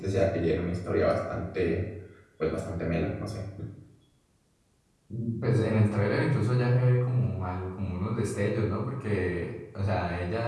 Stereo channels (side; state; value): both; identical; correlation 1.00